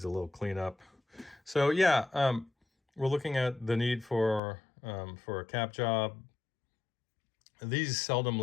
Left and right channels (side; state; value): right; drops out; at 4.4 s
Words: a little cleanup. So yeah, we're looking at the need for a cap job. These seldom